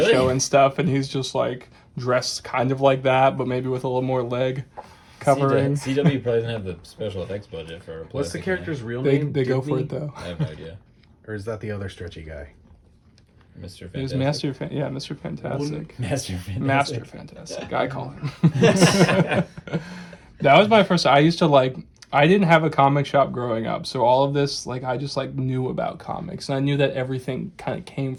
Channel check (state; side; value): identical; both; correlation 1.00